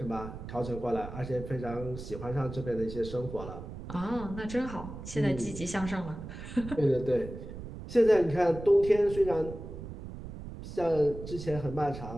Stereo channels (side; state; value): right; noise; rumble, 10 dB below the sound